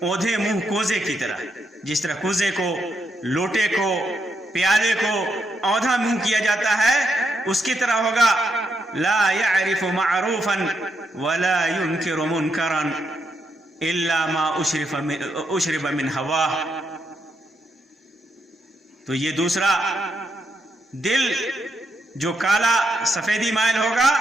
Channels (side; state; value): both; normal; correlation 0.80